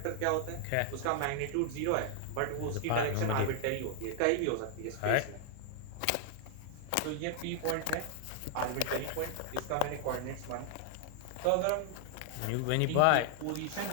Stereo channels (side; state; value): both; different; correlation 0.00